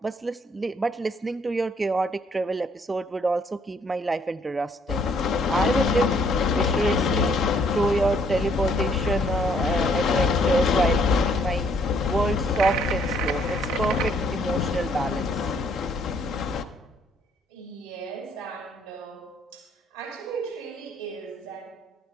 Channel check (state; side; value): normal; both; correlation 0.66